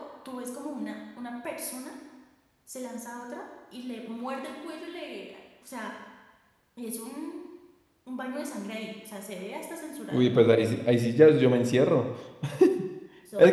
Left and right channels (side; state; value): both; identical; correlation 1.00